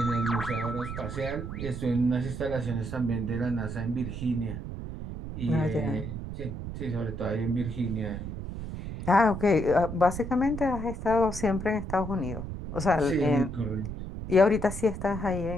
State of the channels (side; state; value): right; noise; rumble, 7 dB below the sound